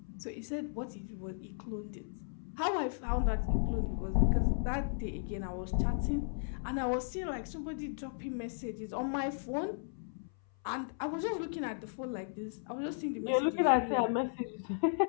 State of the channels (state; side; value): silent; right; 54 dB below the other